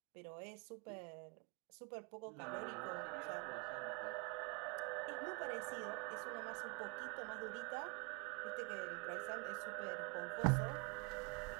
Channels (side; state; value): left; quieter; 30.1 dB